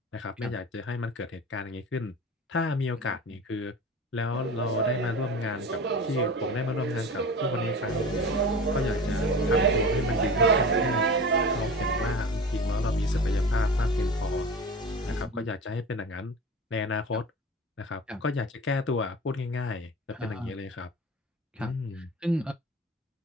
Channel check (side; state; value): both; normal; correlation 0.34